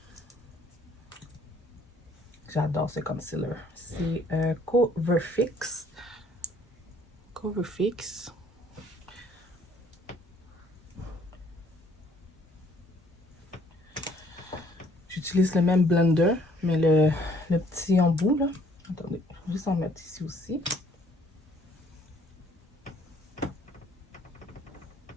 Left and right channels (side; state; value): both; normal; correlation 0.61